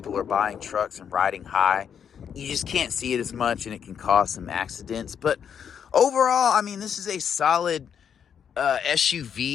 are buying trucks and riding high. You just can't see it as much, and it can cause some accidents. But overall, I mean, this is a solid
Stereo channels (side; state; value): right; quieter; 7.9 dB